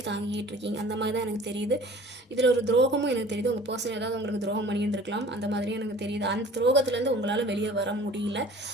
தாங்கிக்கிட்டு இருக்கீங்க, அந்த மாதிரி தான் எனக்கு தெரியுது. இதில் ஒரு துரோகமும் எனக்கு தெரியுது. உங்கள் பர்சன் ஏதாவது உங்களுக்கு துரோகம் பண்ணியிருந்துருக்கலாம், அந்த மாதிரியும் எனக்கு தெரியுது. அந்த துரோகத்துலேருந்து உங்களால் வெளியே வர முடியல,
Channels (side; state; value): both; normal; correlation 0.47